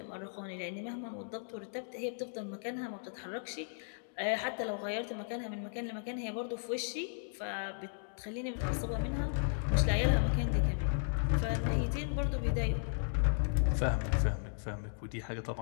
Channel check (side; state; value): right; silent; digital silence